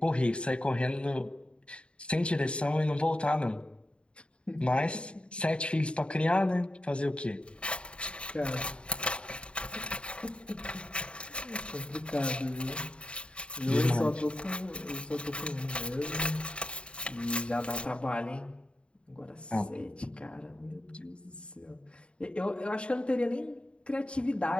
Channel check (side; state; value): right; late; 0.056 ms